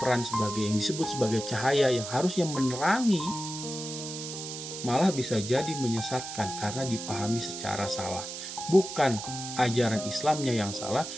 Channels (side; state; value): right; noise; hiss, 8 dB below the sound